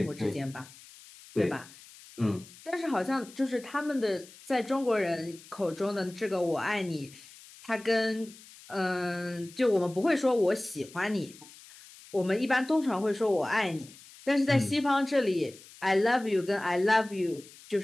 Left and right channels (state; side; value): noise; left; hiss, 21 dB below the sound